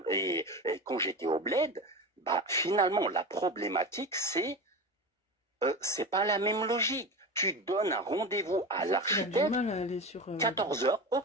j'étais au bled, bah finalement, la problématique, c'est pas la même logique. Tu donnes un rendez-vous à l'architecte, 14h,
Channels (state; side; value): normal; both; correlation 0.27